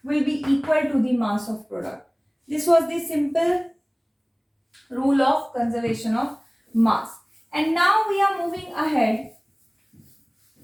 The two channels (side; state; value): both; identical; correlation 1.00